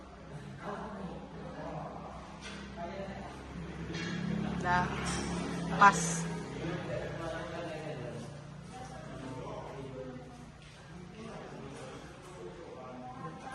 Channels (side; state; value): both; identical; correlation 1.00